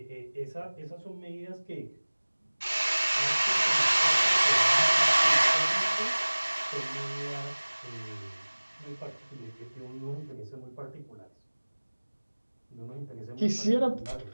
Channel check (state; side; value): inverted; both; correlation -1.00